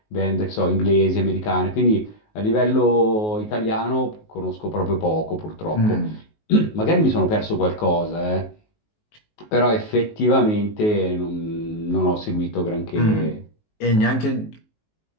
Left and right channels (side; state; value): right; late; 19 ms